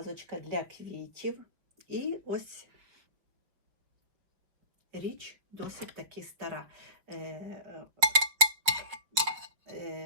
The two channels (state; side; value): late; left; 5.6 ms